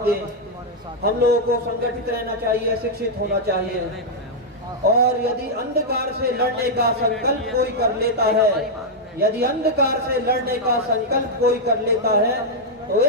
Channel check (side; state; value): both; normal; correlation -0.04